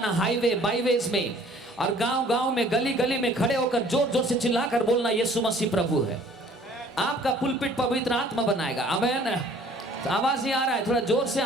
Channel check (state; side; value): normal; both; correlation 0.54